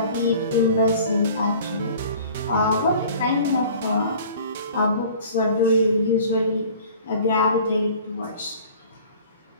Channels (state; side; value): inverted; both; correlation -0.47